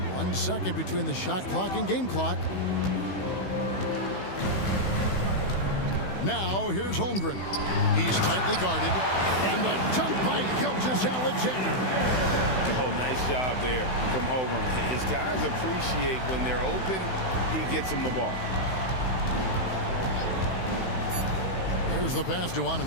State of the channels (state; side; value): late; right; 16 ms